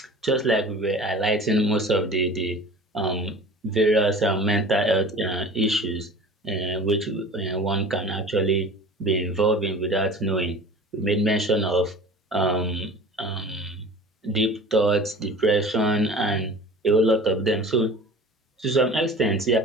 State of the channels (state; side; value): normal; both; correlation 0.40